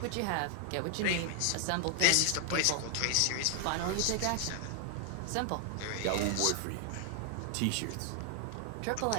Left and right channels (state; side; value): different; both; correlation 0.00